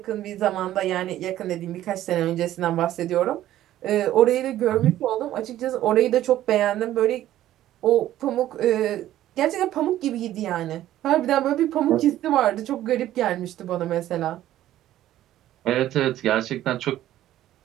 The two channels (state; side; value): quieter; left; 13.3 dB